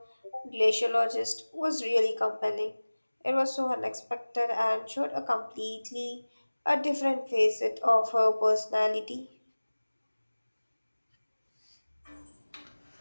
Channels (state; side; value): inverted; both; correlation -1.00